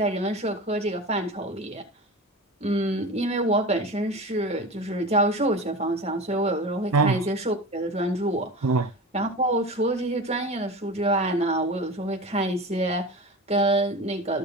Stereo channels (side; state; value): both; normal; correlation 0.31